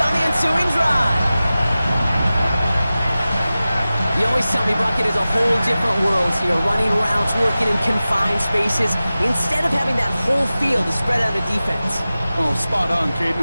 the ensuing drive. You always tell me, Brock, it is a whole different world here. Running routes, working in confined spaces, instead of having that whole field to spread out a defense. Oh, spot on,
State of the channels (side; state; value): both; inverted; correlation -0.96